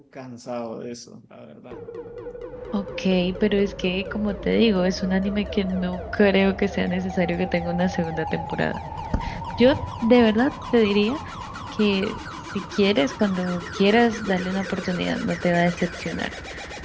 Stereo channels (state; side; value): identical; both; correlation 1.00